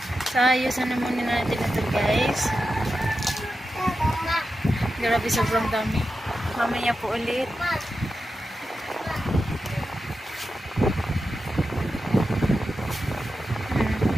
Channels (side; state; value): both; normal; correlation 0.90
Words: So ayusan naman natin ito guys. Grabe sobrang dami. Mamaya po ulit.